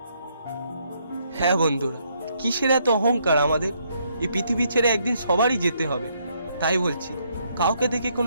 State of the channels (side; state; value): both; inverted; correlation -0.73